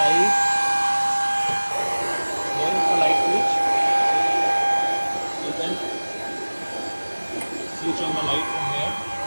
Here is the light switch. You can switch on the light from here.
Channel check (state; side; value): inverted; both; correlation -1.00